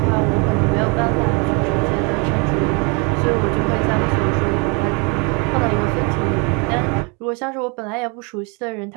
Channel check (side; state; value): left; quieter; 30.4 dB